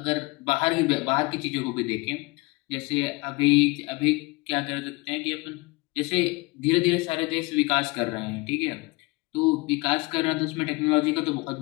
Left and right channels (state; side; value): quieter; right; 25.0 dB